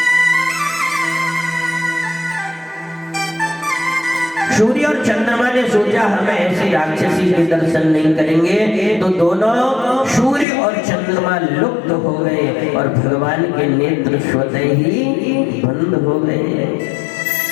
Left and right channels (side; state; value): right; drops out; at 10.5 s